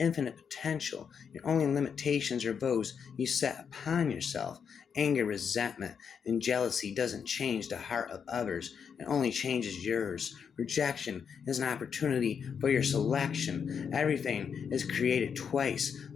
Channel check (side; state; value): right; quieter; 6.9 dB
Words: potential. Your only limitations are those you set upon yourself. Anger, resentment, and jealousy doesn't change the heart of others. It only changes yours. Rejection is an opportunity for your selection. Everything is created twice,